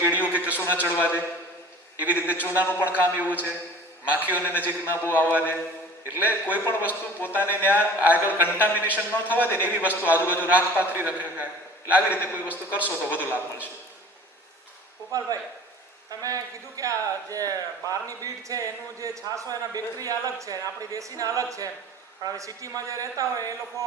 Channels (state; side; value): normal; both; correlation 0.43